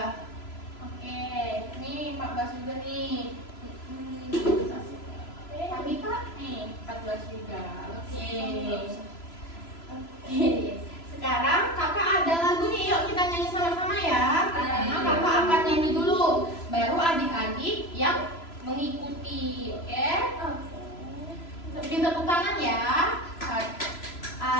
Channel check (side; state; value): right; late; 3.0 ms